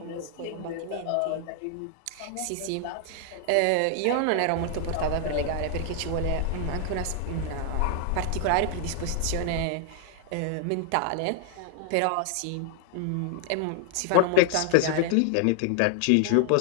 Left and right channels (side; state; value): both; different; correlation 0.00